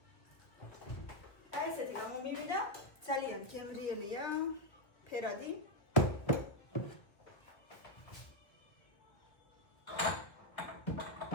აი ესეთი გამომივიდა, ძალიან გემრიელია, ფერადი.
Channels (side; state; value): right; late; 1.5 ms